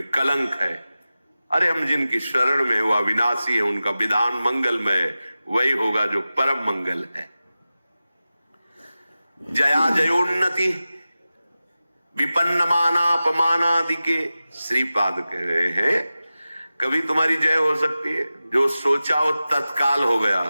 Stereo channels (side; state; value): both; inverted; correlation -0.95